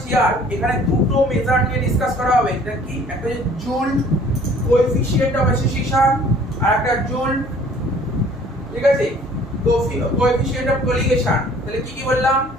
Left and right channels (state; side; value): normal; both; correlation 0.54